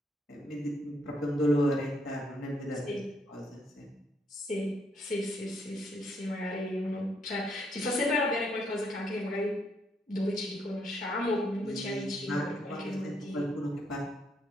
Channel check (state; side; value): normal; both; correlation 0.73